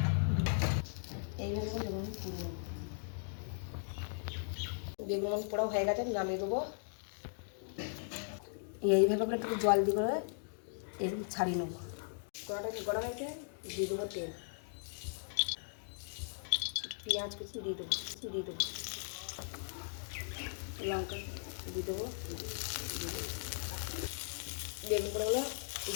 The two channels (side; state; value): right; silent; digital silence